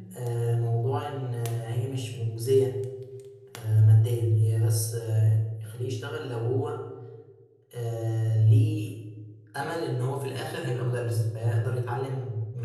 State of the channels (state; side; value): identical; both; correlation 1.00